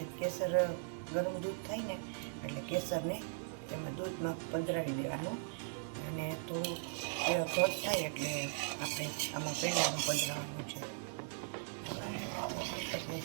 કેસર ગરમ દૂધ થાય ને એટલે કેસરને તેમાં દૂધમાં પધરાવી દેવાનું અને થોડું ઘટ થાય એટલે આપણે આમાં પેંડામાં પધરાવવાનું છે.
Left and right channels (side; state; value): left; silent; digital silence